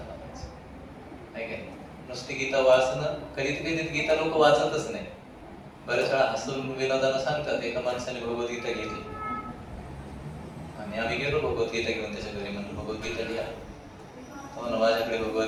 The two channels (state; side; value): identical; both; correlation 1.00